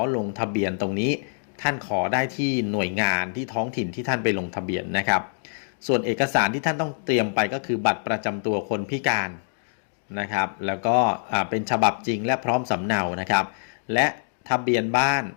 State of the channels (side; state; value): right; silent; digital silence